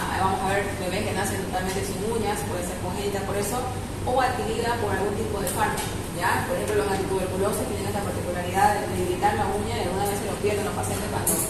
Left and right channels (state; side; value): identical; both; correlation 1.00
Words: vamos a ver bebés que nacen totalmente sin uñas, puede ser congénita por eso, o adquirida por algún tipo de fármaco. ¿Ya? Por ejemplo, los antituberculosos tienen esta particularidad de debilitar la uña y algunas veces lo pierden los pacientes cuando